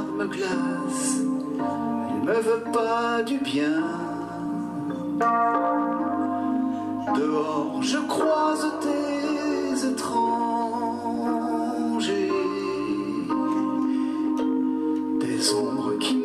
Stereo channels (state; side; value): identical; both; correlation 1.00